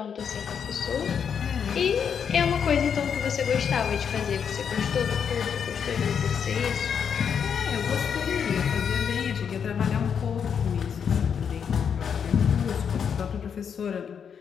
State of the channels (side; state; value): right; quieter; 7.3 dB